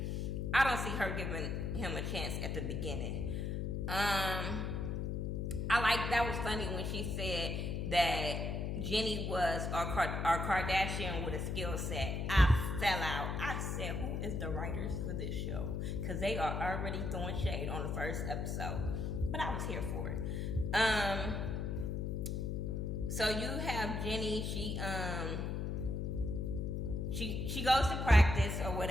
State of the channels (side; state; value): left; noise; hum, 1 dB below the sound